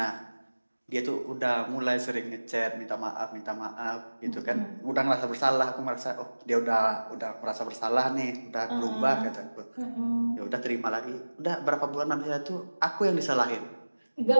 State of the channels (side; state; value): both; inverted; correlation -1.00